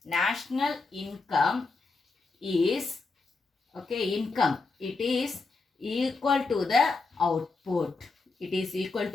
national income is, okay, income, it is equal to the output. It is equal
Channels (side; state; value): right; quieter; 3.9 dB